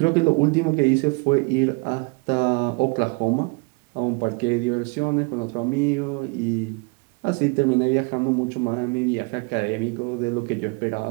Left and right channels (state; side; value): quieter; left; 29.5 dB